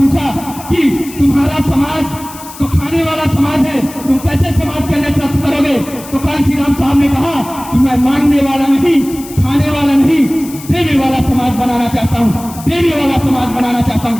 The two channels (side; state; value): left; noise; hiss, 16 dB below the sound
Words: कि तुम्हारा समाज तो खाने वाला समाज है, तुम कैसे समाज का नेतृत्व करोगे? तो कांसीराम साहब ने कहा कि मैं मांगने वाला नहीं, खाने वाला नहीं, देने वाला समाज बनाना चाहता हूँ, देने वाला समाज बनाना चाहता हूँ।